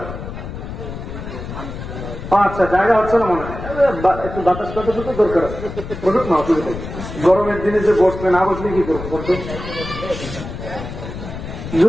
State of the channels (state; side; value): noise; left; rumble, 9 dB below the sound